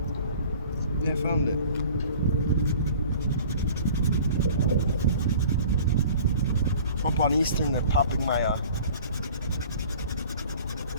Yeah, I found it. Up on Eastern, they're popping my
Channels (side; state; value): both; inverted; correlation -0.46